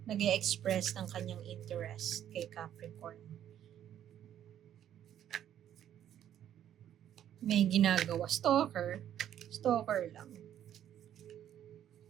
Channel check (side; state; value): left; quieter; 10.7 dB